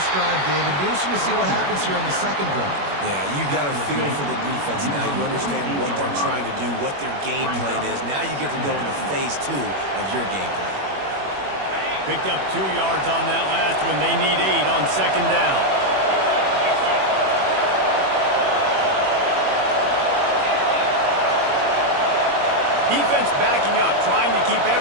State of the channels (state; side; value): late; left; 21 ms